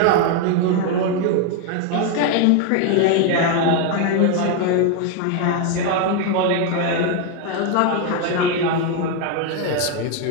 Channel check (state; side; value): different; both; correlation 0.01